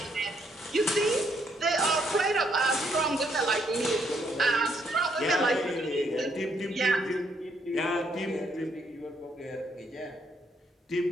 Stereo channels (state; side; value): normal; both; correlation 0.73